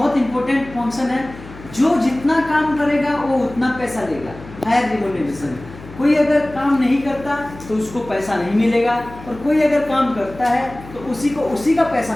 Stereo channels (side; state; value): left; noise; hum, 17 dB below the sound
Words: इंपॉर्टेंट फंक्शन है। जो जितना काम करेगा वो उतना पैसा लेगा, फेयर रेम्यूनरेशन। कोई अगर काम नहीं करता तो उसको पैसा नहीं मिलेगा, और कोई अगर काम करता है तो उसी का